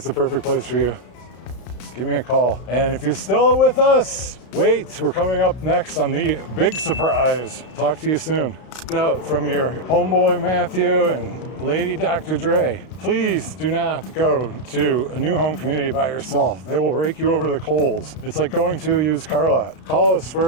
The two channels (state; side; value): late; right; 32 ms